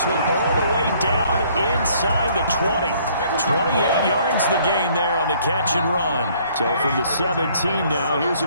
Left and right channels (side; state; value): both; inverted; correlation -0.61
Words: one all the way down inside the 20. 28 yards the gain there on the catch and run. So from the 17 now, here's a